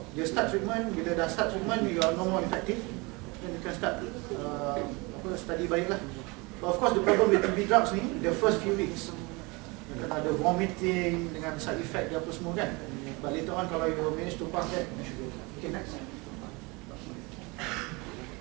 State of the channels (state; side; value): quieter; left; 26.5 dB